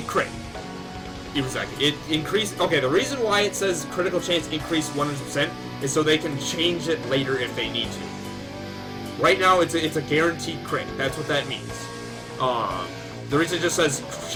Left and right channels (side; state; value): both; identical; correlation 1.00